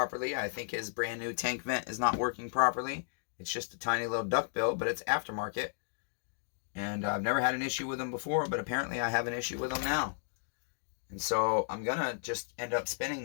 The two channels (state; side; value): silent; right; digital silence